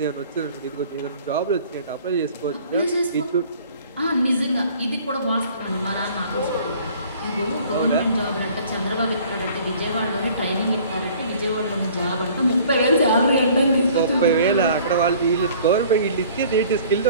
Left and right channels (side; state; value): both; inverted; correlation -0.52